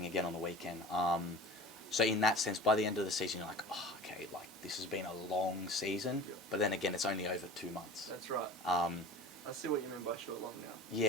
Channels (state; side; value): normal; both; correlation 0.38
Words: again on the weekend. So in that sense, by the end of the season, you're like, oh, okay, like this has been a long season. Yeah. But then again, it's only over 2 months. That's right. I see what you mean by short long now.